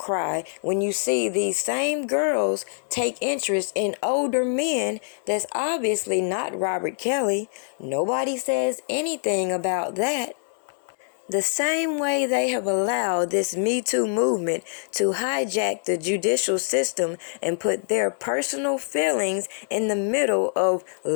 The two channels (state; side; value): silent; right; 62 dB below the other